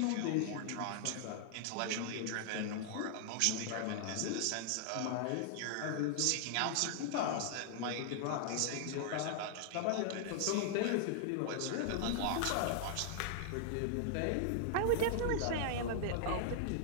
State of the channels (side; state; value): both; different; correlation -0.01